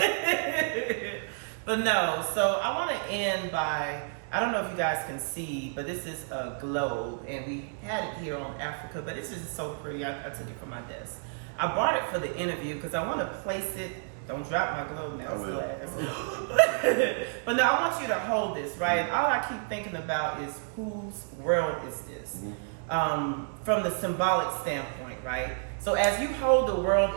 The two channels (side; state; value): left; silent; digital silence